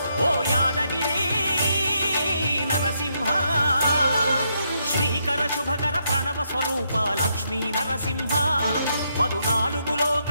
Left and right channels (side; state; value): both; inverted; correlation -0.78